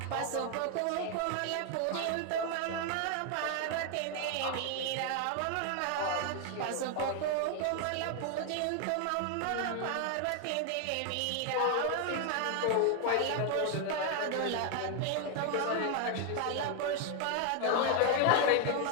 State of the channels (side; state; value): both; different; correlation 0.00